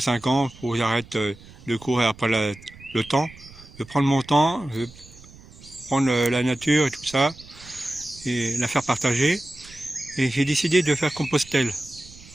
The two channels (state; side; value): noise; right; rumble, 21 dB below the sound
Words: ans, faut que j'arrête de courir après le temps. Je vais prendre mon temps, je vais prendre la nature et tout ça, et la faire partager. Et j'ai décidé de faire Compostelle.